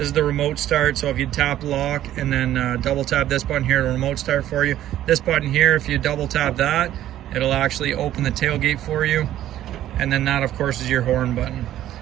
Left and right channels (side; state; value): left; quieter; 12.7 dB